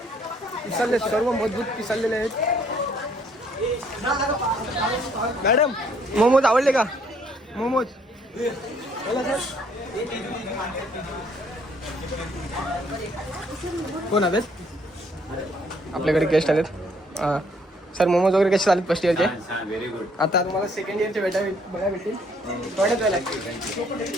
सर्व मजबूत पिसरलेले आहेत. मॅडम मोमोज आवडले का. मोमोज कोण आलेत. आपल्याकडे गेस्ट आलेत. सर मोमोज वगैरे कसे चालेत फर्स्ट इयरचे. Very good. आता तुम्हाला सेकंड इयरचे बघा भेटतील. थोड्याच वेळेला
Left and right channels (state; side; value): normal; both; correlation 0.65